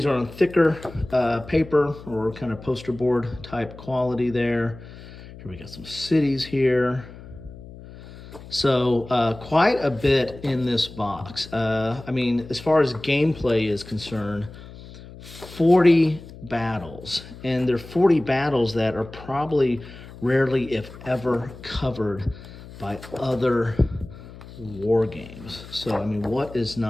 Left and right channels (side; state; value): left; noise; hum, 16 dB below the sound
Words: are on thicker paper or kind of poster board type quality there. Here we got some cities here. So quite a bit in this box. I mean, as far as gameplay is concerned, 40 battles. And they're 40 battles that are probably rarely, if ever, covered by other war games. So, I mean, what is